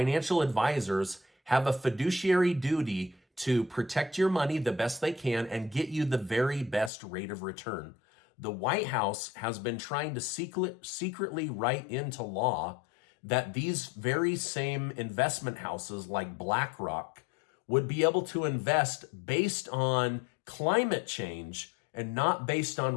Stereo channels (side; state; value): right; drops out; at 6.9 s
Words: advisors have a fiduciary duty to protect your money the best they can and get you the very best rate of return. The White House has been trying to secretly write into law that these very same investment houses like BlackRock would be able to invest based on climate change and not based